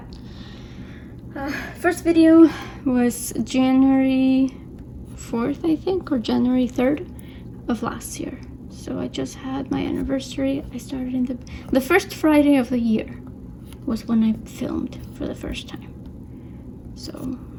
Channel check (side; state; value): both; identical; correlation 1.00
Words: First video was January 4th, I think, or January 3rd of last year. So I just had my anniversary. I started in the first Friday of the year was when I filmed for the first time. So